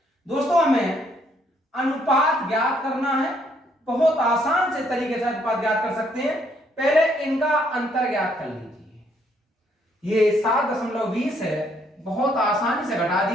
दोस्तों हमें अनुपात ज्ञात करना है। बहुत आसान से तरीके से अनुपात ज्ञात कर सकते हैं। पहले इनका अंतर ज्ञात कर लीजिए। ये 7.20 है, बहुत आसानी से घटा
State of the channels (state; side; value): normal; both; correlation 0.69